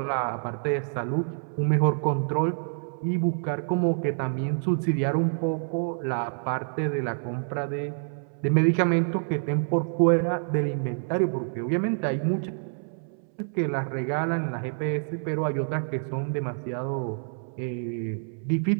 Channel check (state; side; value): silent; left; 60 dB below the other